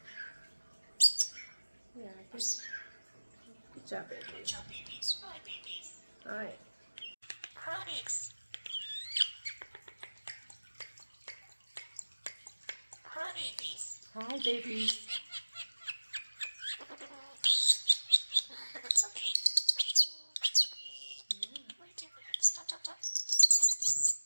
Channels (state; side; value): inverted; both; correlation -1.00